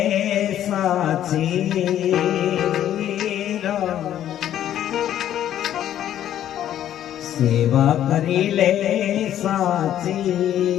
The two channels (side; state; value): right; quieter; 11.3 dB